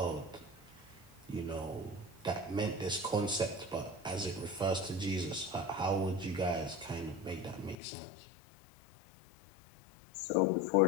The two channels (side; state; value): right; drops out; at 7.8 s